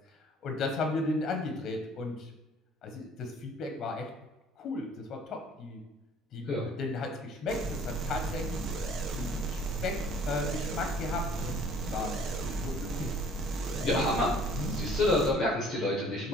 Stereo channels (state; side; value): normal; both; correlation 0.54